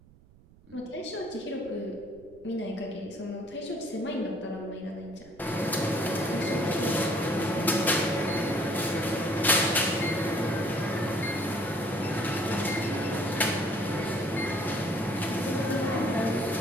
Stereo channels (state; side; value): noise; right; rumble, 25 dB below the sound